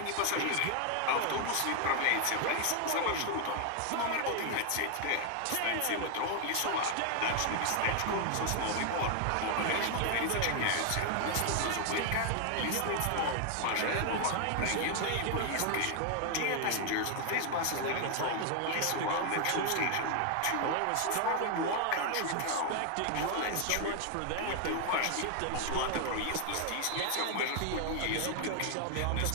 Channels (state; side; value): different; both; correlation 0.00